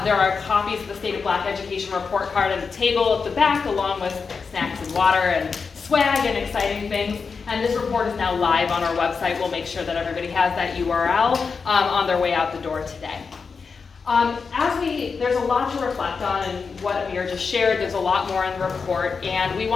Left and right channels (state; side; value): quieter; right; 5.2 dB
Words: There are copies of the State of Black Education report card at the table at the back, along with snacks and water and swag and exciting things. And this report is now live on our website. We'll make sure that everybody has that URL on their way out the door today. There's a lot to reflect on in what Amir just shared. There's a lot more in the report, and we